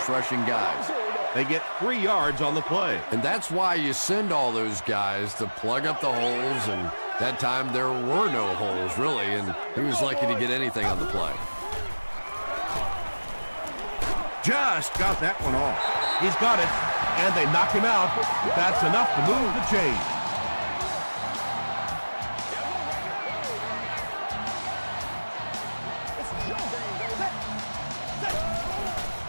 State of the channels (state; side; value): inverted; both; correlation -1.00